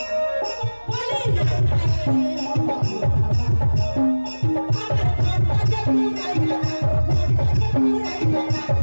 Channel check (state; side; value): inverted; both; correlation -1.00